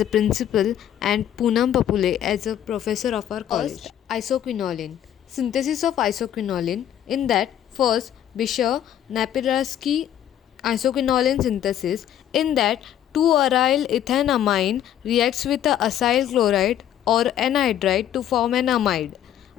a principal and Poonam Papule as a professor of our college. First, isoquinoline. Synthesis of isoquinoline in that first Bisher Napiraski isoquinoline synthesis in that 2-aryl ethanamine reacts with a acyl chloride or anhydride to form an amide.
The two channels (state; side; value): quieter; right; 10.8 dB